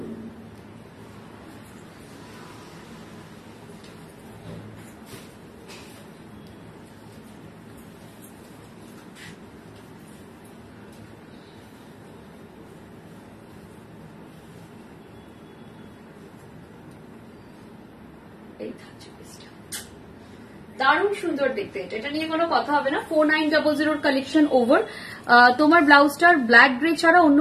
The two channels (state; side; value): identical; both; correlation 1.00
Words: দারুণ সুন্দর দেখতে, এটা নিয়ে কোনো কথা হবে না। 4900 কালেকশন ওভার। তোমার ব্লাউজটার ব্ল্যাক গ্রে ছাড়া অন্য